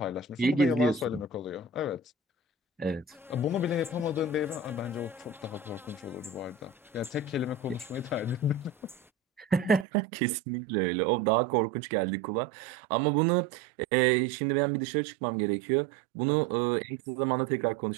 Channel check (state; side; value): drops out; left; at 9.9 s